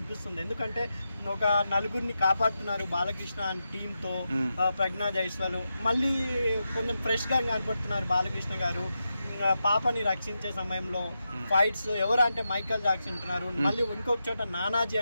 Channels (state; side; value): inverted; both; correlation -0.88